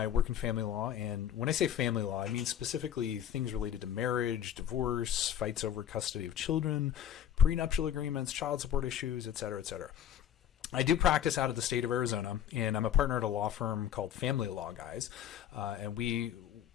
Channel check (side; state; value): right; quieter; 9.9 dB